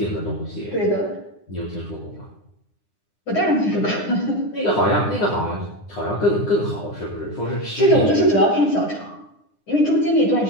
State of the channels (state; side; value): late; right; 9.8 ms